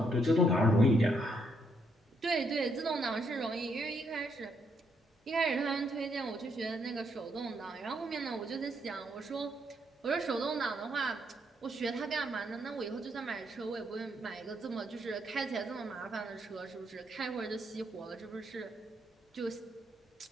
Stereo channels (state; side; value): normal; both; correlation 0.74